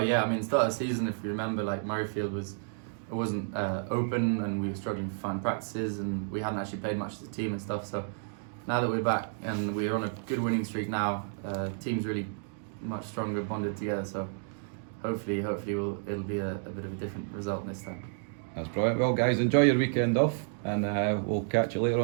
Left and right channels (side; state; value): left; silent; digital silence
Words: start of the season, if you remember, Murrayfield wasn't open, and we were struggling to find practices, and we hadn't actually played much as a team and stuff. So now that we're back and we're on a good winning streak now, team's really much stronger, bonded together. So hopefully it'll be a bit of a different result this time. That's brilliant. Well, guys, enjoy your weekend off, and we'll catch you later